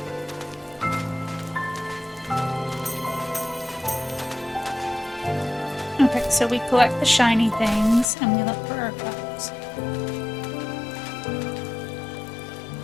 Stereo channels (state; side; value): drops out; right; at 8.1 s